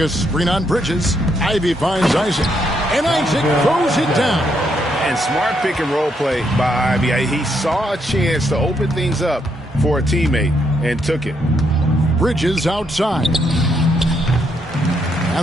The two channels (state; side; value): normal; both; correlation 0.76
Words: screen on Bridges. Ivy finds Isaac. And Isaac throws it down. And smart pick and roll play by Ivy. He saw a chance to open things up for a teammate and took it. Bridges outside.